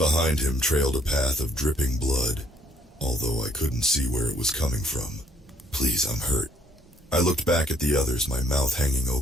him trailed a path of dripping blood, although I couldn't see where it was coming from. "Please, I'm hurt." I looked back at the others, my mouth hanging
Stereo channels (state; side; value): normal; both; correlation 0.65